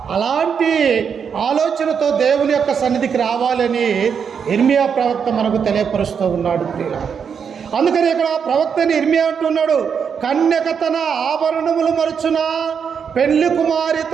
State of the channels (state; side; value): quieter; left; 6.9 dB